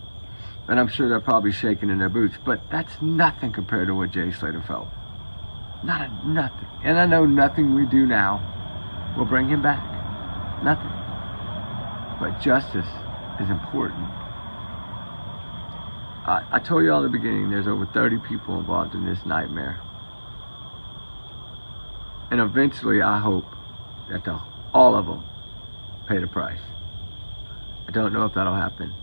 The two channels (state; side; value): inverted; both; correlation -1.00